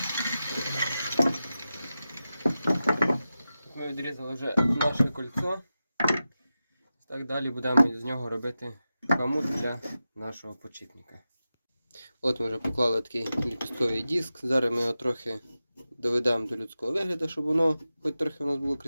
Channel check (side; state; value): both; inverted; correlation -0.93